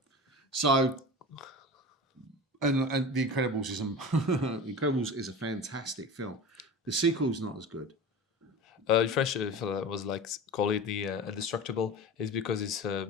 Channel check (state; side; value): normal; both; correlation 0.32